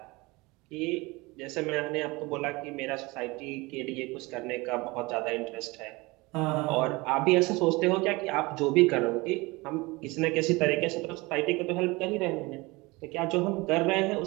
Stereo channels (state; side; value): quieter; left; 23.6 dB